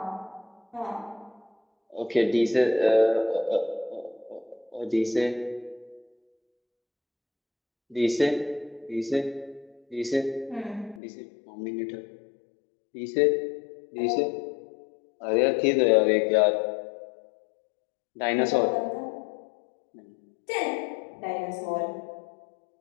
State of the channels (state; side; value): drops out; right; at 11.0 s